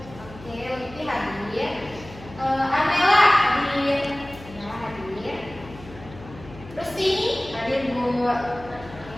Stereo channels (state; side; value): noise; left; hum, 17 dB below the sound